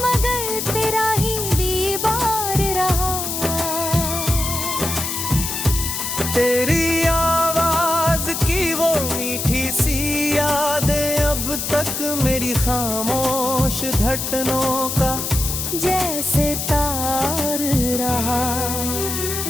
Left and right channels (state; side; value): noise; left; hiss, 3 dB below the sound